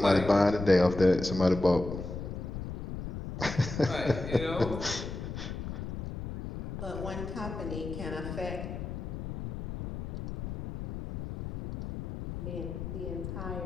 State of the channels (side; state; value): left; noise; rumble, 6 dB below the sound